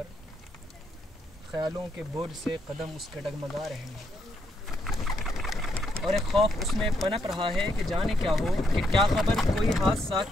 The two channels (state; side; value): normal; both; correlation 0.77